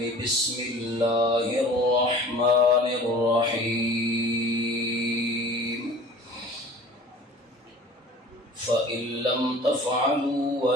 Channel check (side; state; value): both; normal; correlation 0.43